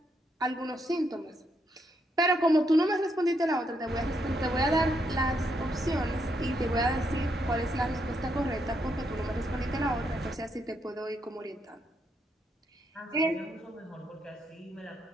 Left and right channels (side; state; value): both; normal; correlation 0.78